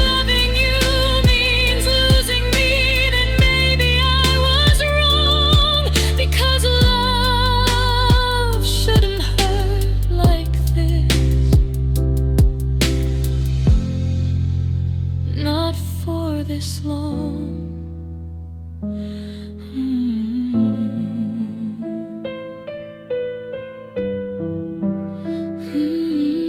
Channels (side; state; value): both; identical; correlation 1.00